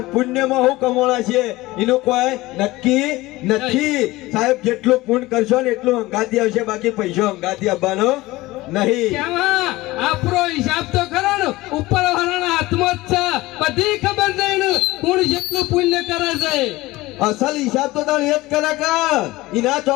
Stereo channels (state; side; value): quieter; right; 19.3 dB